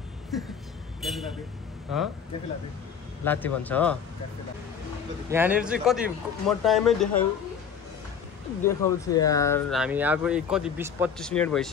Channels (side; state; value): right; quieter; 7.1 dB